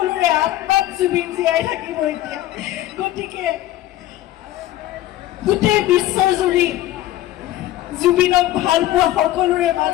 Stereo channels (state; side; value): quieter; right; 14.7 dB